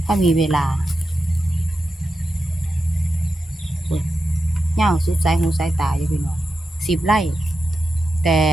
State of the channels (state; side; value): normal; both; correlation 0.90